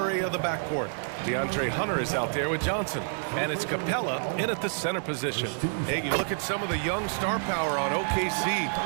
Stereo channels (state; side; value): silent; left; digital silence